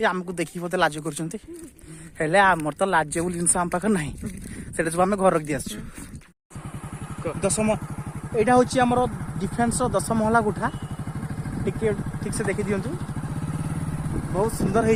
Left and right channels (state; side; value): identical; both; correlation 1.00